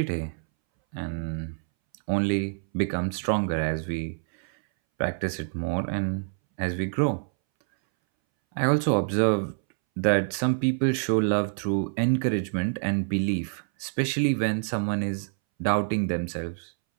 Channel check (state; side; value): silent; left; 60 dB below the other